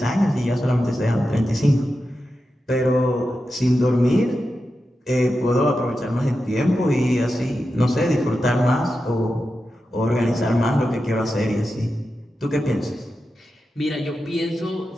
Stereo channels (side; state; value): both; normal; correlation 0.90